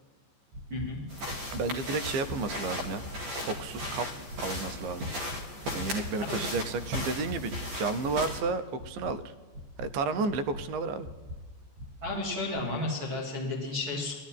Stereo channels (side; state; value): left; late; 14 ms